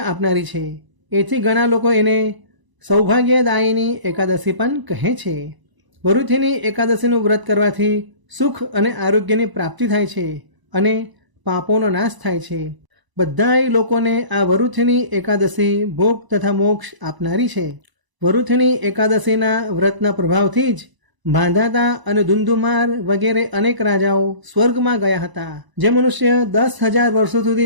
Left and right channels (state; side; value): late; left; 1.0 ms